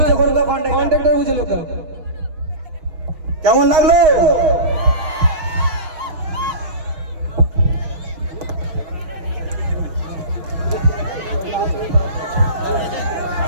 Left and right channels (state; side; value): late; left; 6.3 ms